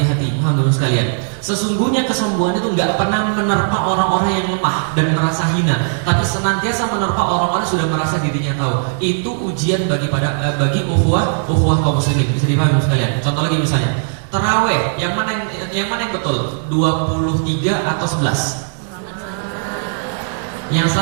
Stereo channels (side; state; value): left; silent; digital silence